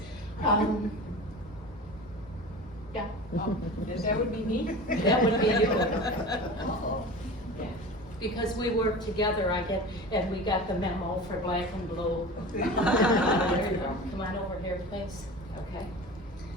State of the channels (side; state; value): both; normal; correlation 0.34